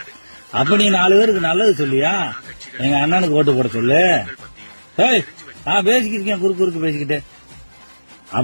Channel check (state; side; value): inverted; both; correlation -1.00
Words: அப்ப நீ 4 பேருக்கு நல்லது சொல்லியா? எங்க அண்ணனுக்கு ஓட்டு போட சொல்லு. பேசிக்கிட்டு குறுக்கு பேசிக்கிட்டு.